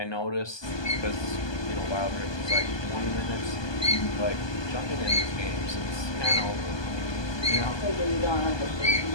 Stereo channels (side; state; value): right; late; 1.2 ms